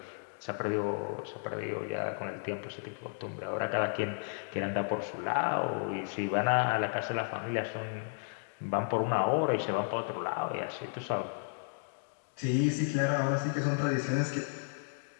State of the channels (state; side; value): silent; right; digital silence